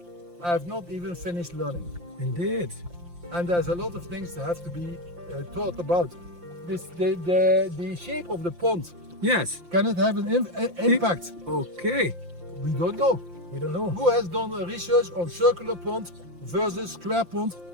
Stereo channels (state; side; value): late; left; 5.8 ms